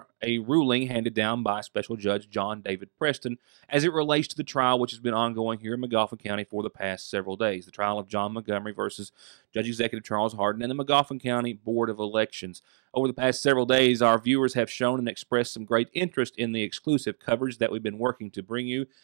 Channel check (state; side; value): silent; left; digital silence